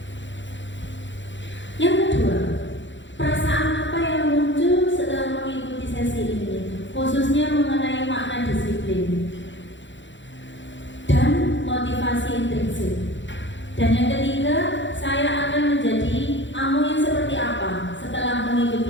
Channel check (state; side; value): late; right; 0.54 ms